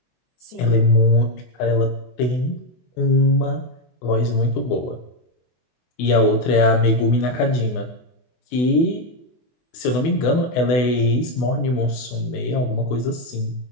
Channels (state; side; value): late; right; 24 ms